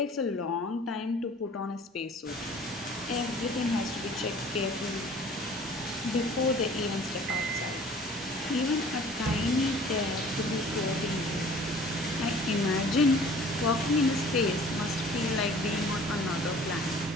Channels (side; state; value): both; normal; correlation 0.49